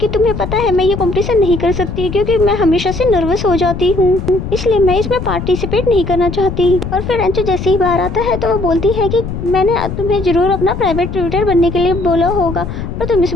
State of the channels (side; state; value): left; noise; rumble, 6 dB below the sound